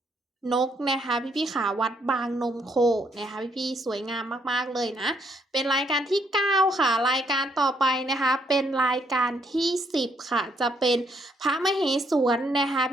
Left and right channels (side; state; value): both; normal; correlation 0.72